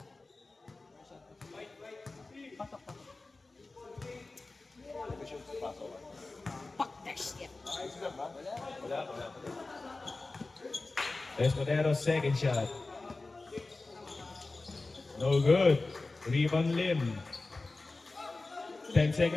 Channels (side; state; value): right; quieter; 3.4 dB